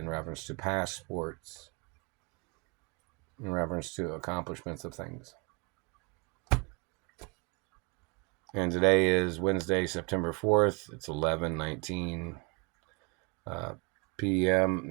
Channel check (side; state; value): left; quieter; 31.6 dB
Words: reference to past sports, in reference to accomplishments of things. And today is Wednesday, September 4th. It's 11:19 p.m.